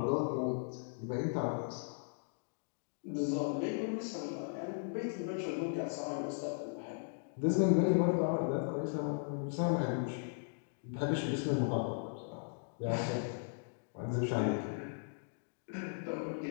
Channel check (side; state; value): right; silent; digital silence